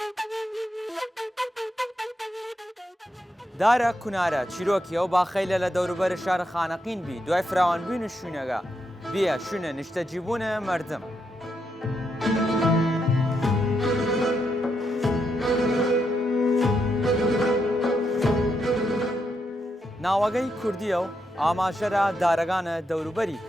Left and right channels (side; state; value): both; normal; correlation 0.81